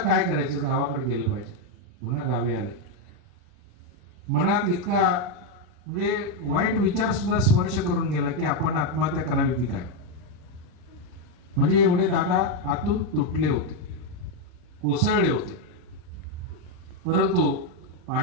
करायचं, गावाकडे गेलं पाहिजे. पुन्हा गावी आले. मनात इतका म्हणजे वाईट विचार सुद्धा स्पर्श करून गेला की आपण आत्महत्या करावी की काय. म्हणजे एवढे दादा आतून तुटले होते, कोसळले होते. परंतु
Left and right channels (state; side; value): late; left; 40 ms